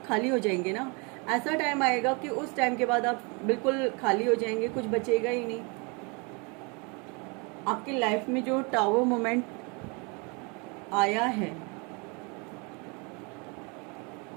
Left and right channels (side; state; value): left; quieter; 31.6 dB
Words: खाली हो जाएंगे ना। ऐसा टाइम आएगा कि उस टाइम के बाद आप बिल्कुल खाली हो जाएंगे, कुछ बचेगा ही नहीं। आपकी लाइफ में जो टावर मोमेंट आया है,